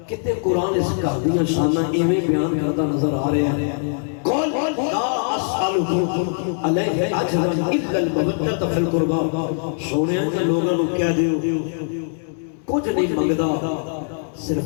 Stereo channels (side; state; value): right; silent; digital silence